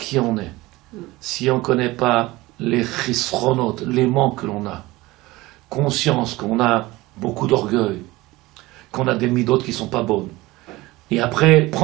on est, si on ne connaît pas les chisronotes, les manques que l'on a, conscience qu'on a beaucoup d'orgueil, qu'on a des midotes qui ne sont pas bonnes, et après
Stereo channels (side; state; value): left; quieter; 19.9 dB